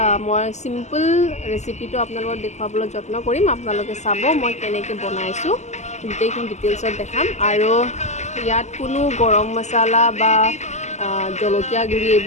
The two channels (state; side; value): late; right; 0.33 ms